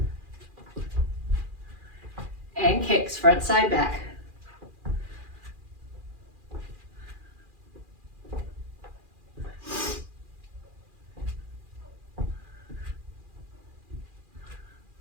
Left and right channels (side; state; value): left; late; 2.4 ms